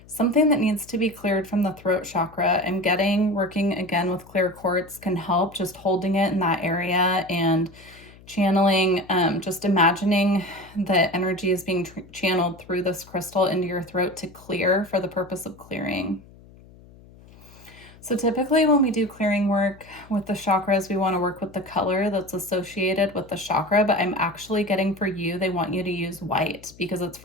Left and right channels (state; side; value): noise; left; hum, 23 dB below the sound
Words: something that needs to be cleared from the throat chakra. I'm getting, working again with clear quartz can help, just holding it in that area and channeling, just imagining the energy is being channeled through this crystal into your throat to clear for the purpose of clearing. So typically when we do clearing work with the chakras, we want to work with the color that's associated with the chakra, but I'm actually getting for you, they want you to use white because it's